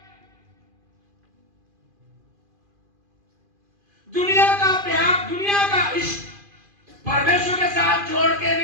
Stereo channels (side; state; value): left; late; 2.5 ms